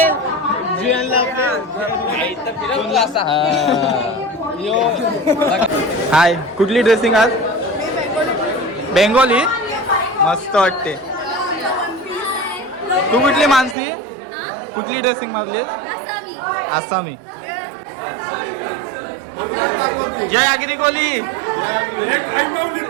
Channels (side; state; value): left; drops out; at 13.8 s